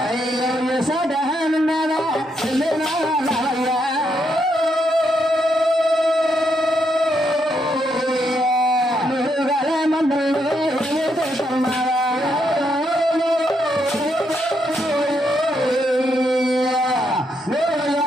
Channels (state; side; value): normal; both; correlation 0.78